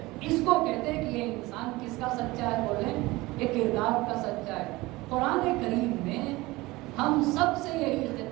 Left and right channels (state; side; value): quieter; left; 20.7 dB